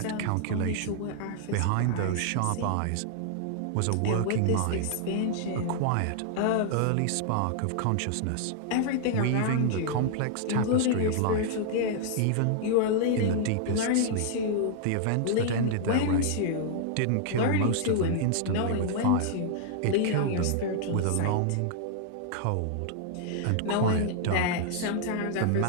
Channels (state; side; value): different; both; correlation -0.01